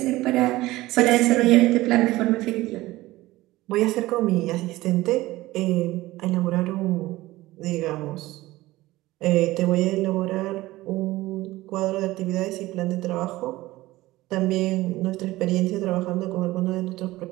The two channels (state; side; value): quieter; left; 18.1 dB